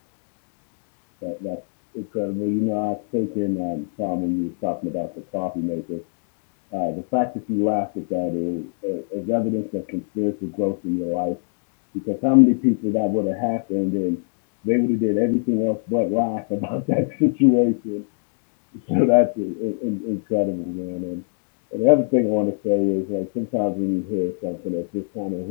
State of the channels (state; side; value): silent; right; digital silence